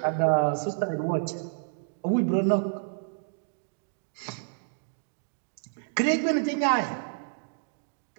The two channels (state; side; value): silent; left; digital silence